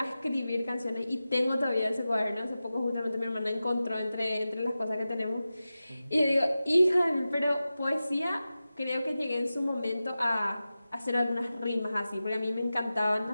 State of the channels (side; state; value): both; inverted; correlation -0.94